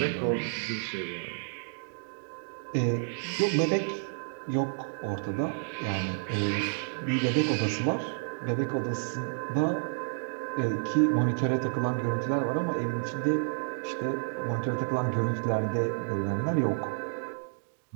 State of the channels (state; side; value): silent; left; digital silence